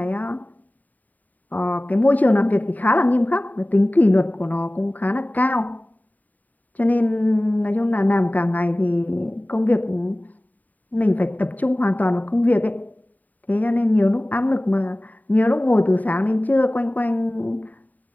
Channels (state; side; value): late; right; 0.079 ms